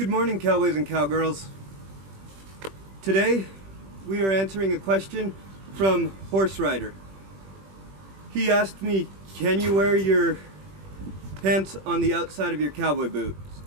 morning, cowboys and cowgirls. Today, we are answering a question from Horse Rider. He asked me, can you wear your pants on the outside of your cowboy boots?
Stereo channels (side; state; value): left; late; 21 ms